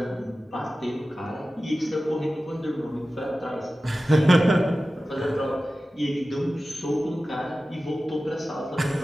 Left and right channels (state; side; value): normal; both; correlation 0.95